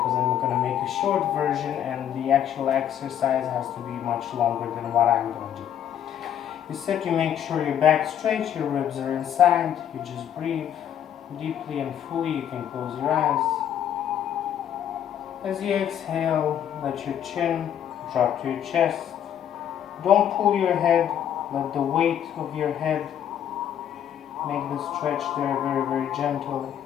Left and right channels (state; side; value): quieter; right; 10.0 dB